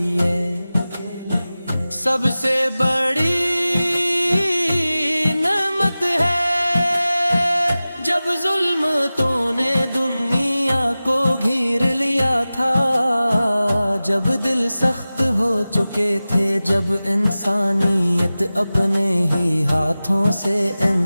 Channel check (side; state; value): both; inverted; correlation -0.96